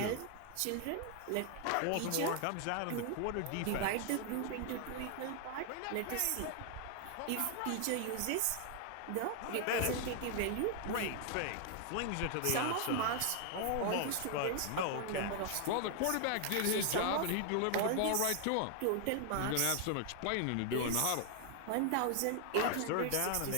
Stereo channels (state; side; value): different; both; correlation 0.00